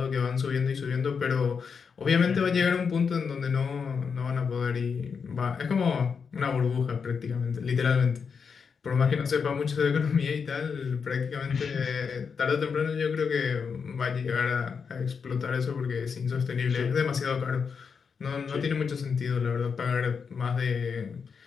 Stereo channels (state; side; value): quieter; right; 6.0 dB